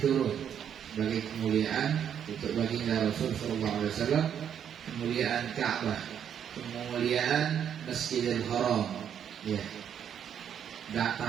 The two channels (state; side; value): quieter; left; 8.8 dB